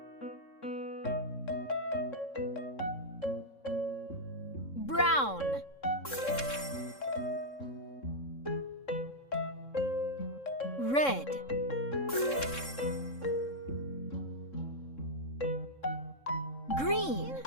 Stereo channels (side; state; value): right; late; 3.7 ms